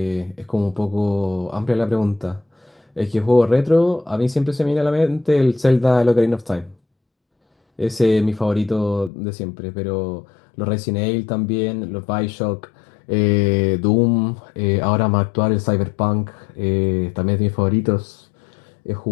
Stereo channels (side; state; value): right; drops out; at 9.1 s